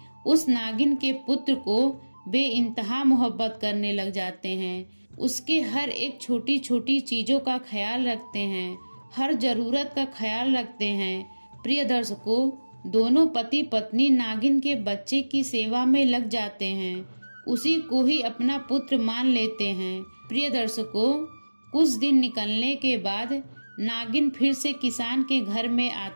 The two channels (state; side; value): inverted; both; correlation -1.00